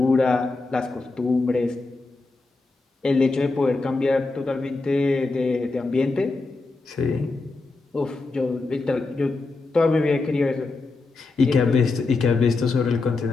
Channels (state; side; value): quieter; right; 3.6 dB